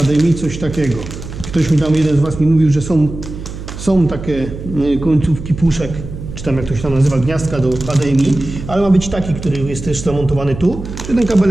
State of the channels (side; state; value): right; noise; hum, 10 dB below the sound